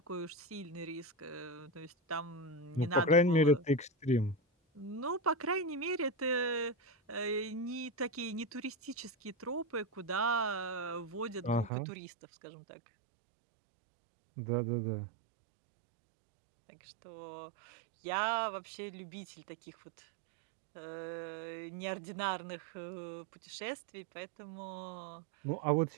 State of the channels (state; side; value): drops out; left; at 11.7 s